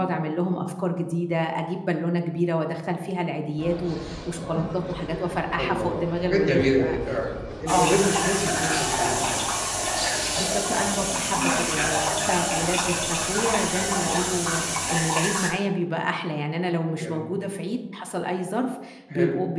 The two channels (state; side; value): identical; both; correlation 1.00